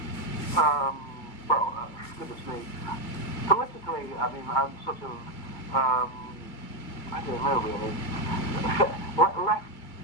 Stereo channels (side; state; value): right; late; 2.3 ms